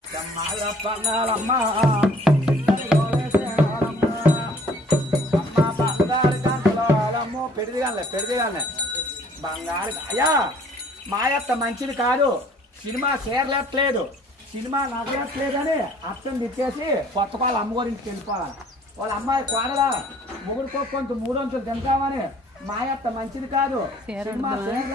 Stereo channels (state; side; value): normal; both; correlation 0.56